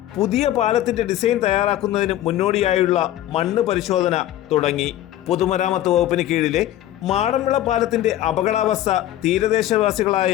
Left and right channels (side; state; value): right; quieter; 13.4 dB